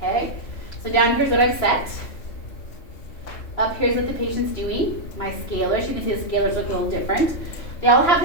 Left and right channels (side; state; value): right; late; 3.0 ms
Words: So down here's what I've set. Up here's what the patient's doing. My scalars, you can see the scalars look a little different. They all have